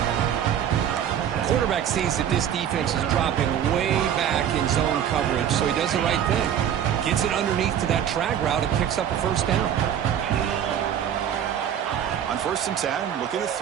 Quarterback sees that this defense is dropping way back in zone coverage, so he does the right thing. Gets it underneath to that drag route and picks up a first down. On 1st and 10, looking to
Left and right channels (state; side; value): quieter; left; 9.5 dB